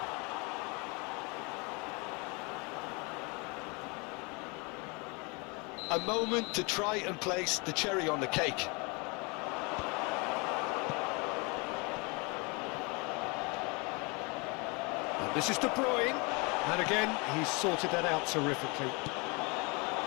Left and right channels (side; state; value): right; quieter; 29.6 dB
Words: A moment to try and place the cherry on the cake. And this is De Bruyne. And again, he's sorted that out terrifically.